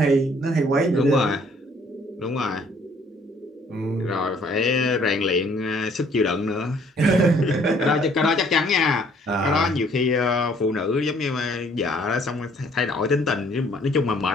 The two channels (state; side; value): normal; both; correlation 0.61